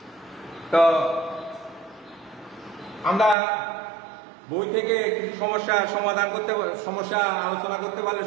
তো আমরা বই থেকে কিছু সমস্যার সমাধান করতে, সমস্যা আলোচনা করতে পারলে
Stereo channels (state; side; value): drops out; left; at 3.4 s